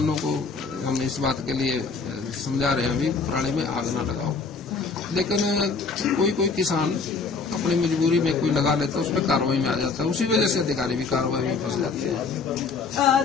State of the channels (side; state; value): right; quieter; 4.6 dB